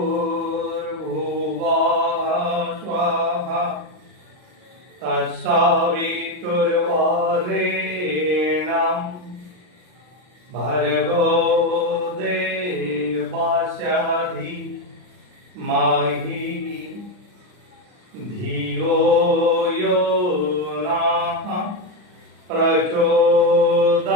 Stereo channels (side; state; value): left; late; 39 ms